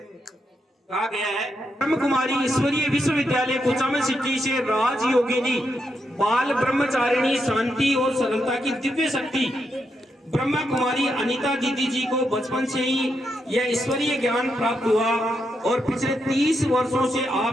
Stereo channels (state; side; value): normal; both; correlation 0.82